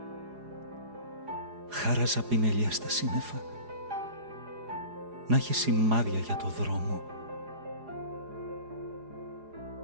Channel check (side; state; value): left; late; 4.8 ms